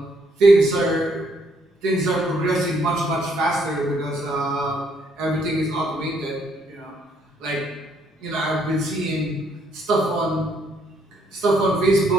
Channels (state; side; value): normal; both; correlation 0.70